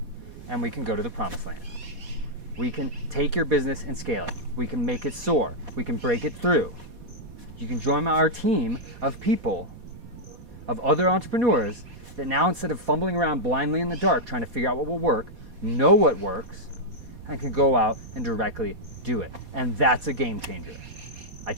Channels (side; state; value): left; late; 4.1 ms